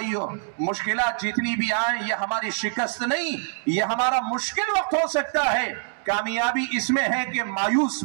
مشکلات جتنی بھی آئیں یہ ہماری شکست نہیں، یہ ہمارا مشکل وقت ہو سکتا ہے۔ کامیابی اس میں ہے کہ مایوس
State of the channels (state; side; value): silent; left; digital silence